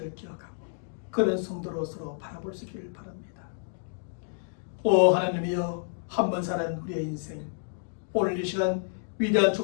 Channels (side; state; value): right; silent; digital silence